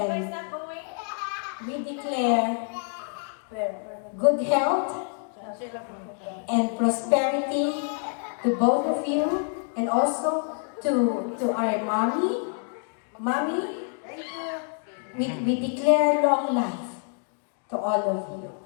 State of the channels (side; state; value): right; silent; 56 dB below the other